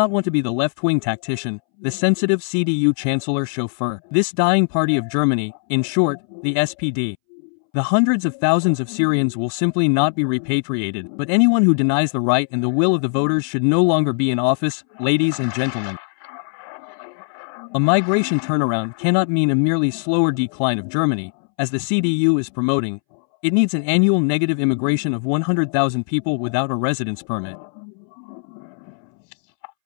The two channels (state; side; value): silent; right; 66 dB below the other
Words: want to be the left-wing tactician, the sensitive CDU chancellor chauffeur. This dying party of Germany, in short, the SPD. The hundreds of thousands of Syrians will simply not be repatriated, but anyone who denies the right and the will of the voters should no longer be in office, ladies and gentlemen. A migration turnaround cannot mean a merely slower decline of Germany, as the CDU is promoting. It needs an annual negative immigration of 100,000 people without a residence permit.